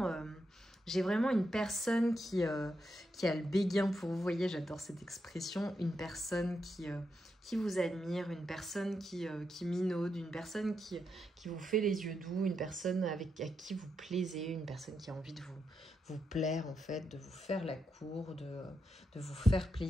une personne qui a le béguin pour vous. Vous voyez, j'adore cette expression. Une personne qui vous admire, une personne qui minaude, une personne qui vous fait les yeux doux, une personne à qui vous plaisez, une personne qui a envie de vous plaire en fait, de vous faire la cour, de vous faire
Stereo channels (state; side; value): normal; both; correlation 0.84